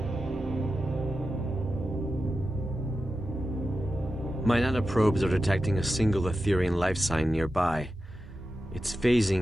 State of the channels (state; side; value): normal; both; correlation 0.91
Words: My nanoprobes are detecting a single Aetherian life sign nearby. It's